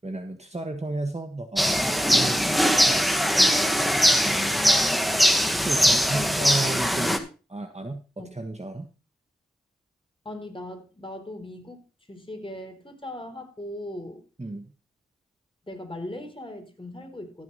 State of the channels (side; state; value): both; normal; correlation 0.92